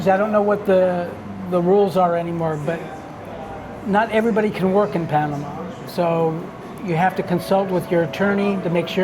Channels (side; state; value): both; identical; correlation 1.00